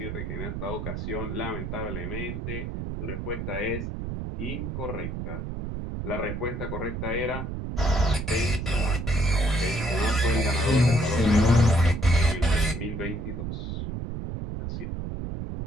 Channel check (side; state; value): right; noise; rumble, 5 dB below the sound